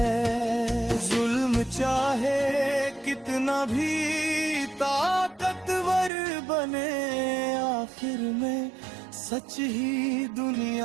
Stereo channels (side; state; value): left; drops out; at 6.1 s